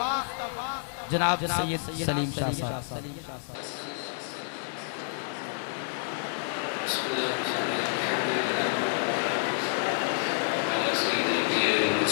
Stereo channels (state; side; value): silent; right; digital silence